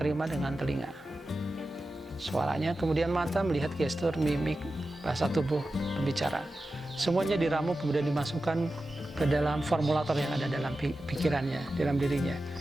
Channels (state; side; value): normal; both; correlation 0.93